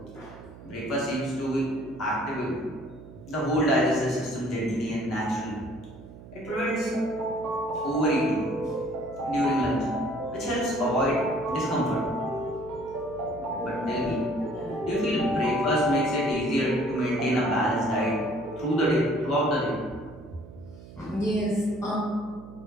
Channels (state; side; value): noise; right; hum, 17 dB below the sound